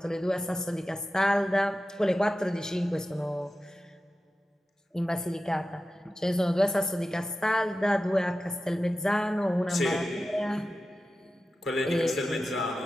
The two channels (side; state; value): both; normal; correlation 0.93